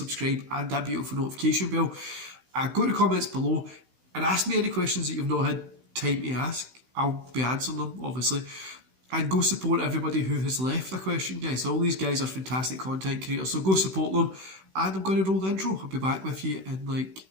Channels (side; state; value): left; late; 16 ms